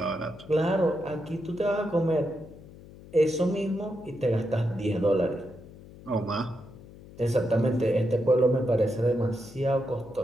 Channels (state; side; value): noise; left; hum, 19 dB below the sound